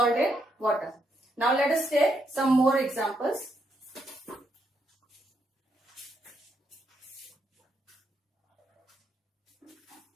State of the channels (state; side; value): normal; both; correlation 0.78